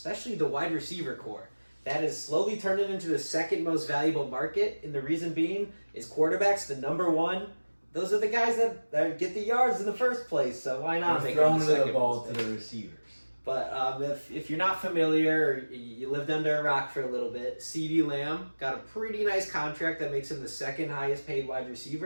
the wide receiver core. That is slowly turning into the second most valuable market, and the reason being is quarterbacks, the number one. Those are the guys that get the yards in the first place, so why not make them the second the ball to the receivers? But if you're not familiar, or you lived under a rock for a little bit, CeeDee Lamb got a pretty nice contract that makes him the second highest paid wide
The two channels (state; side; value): inverted; both; correlation -1.00